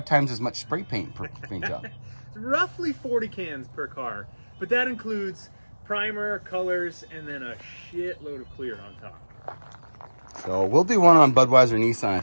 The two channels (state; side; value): inverted; both; correlation -1.00